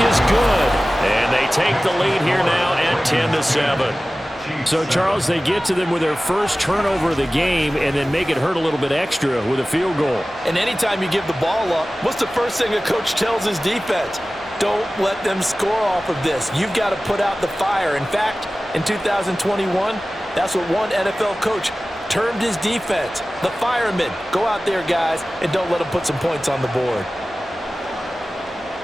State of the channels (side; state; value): both; normal; correlation 0.96